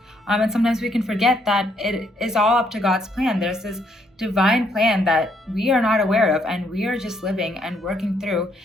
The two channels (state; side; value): normal; both; correlation 0.71